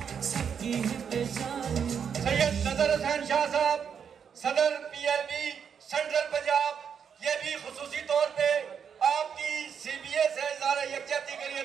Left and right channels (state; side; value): quieter; left; 7.3 dB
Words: सैयद नजर हुसैन शाह साहब, सदर PLB सेंट्रल पंजाब, ये भी खुसूसी तौर पे आपकी CBA से इज़हारे यकजहती के लिए